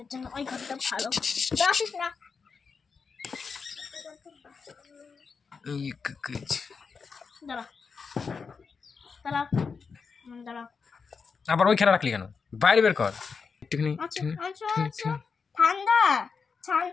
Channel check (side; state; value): right; quieter; 5.3 dB